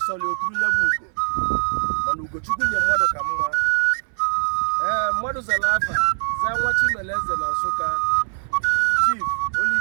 sọrọ oturu nye bụ ugo mana Ugochukwu nye mmadụ ka mma mmadụ zara afa zaa nwa Chimeleze na Nsụka Chief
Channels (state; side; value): silent; left; 64 dB below the other